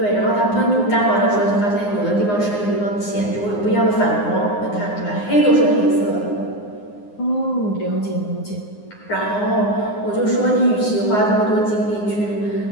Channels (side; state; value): right; late; 9.7 ms